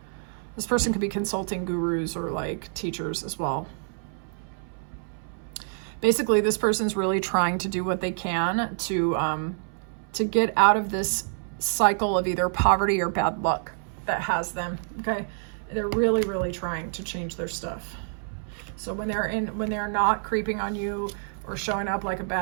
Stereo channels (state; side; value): silent; left; 60 dB below the other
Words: This person could be consulting gurus or like teachers as well. Basically, this person's really trying to do what they can to get out of this cycle of either poverty or bad luck that has them. Okay. They're really, really trying to change their stuff. So when they're not creeping on you or showing up like a